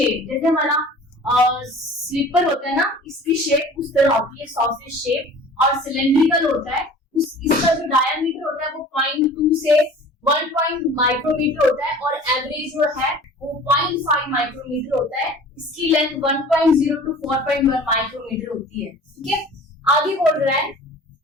जैसे हमारा स्लीपर होता है ना, इसकी शेप उस तरह होती है, सॉसेज शेप, और सिलेंड्रिकल होता है। इसका जो डायमीटर होता है वो 0.2 से 1 माइक्रोमीटर होता है, और एवरेज जो है वो 0.5 माइक्रोमीटर होता है। इसकी लेंथ 1.0 टू 4.1 माइक्रोमीटर होती है। ठीक है, आगे बोल रहा है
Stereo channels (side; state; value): both; normal; correlation 0.45